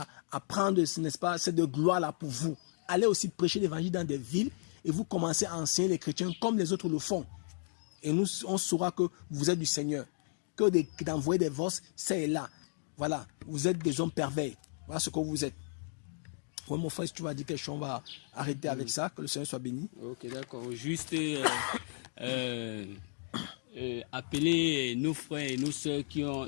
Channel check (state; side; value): silent; right; digital silence